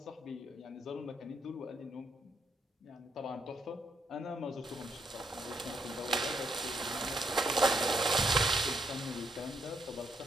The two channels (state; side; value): normal; both; correlation 0.76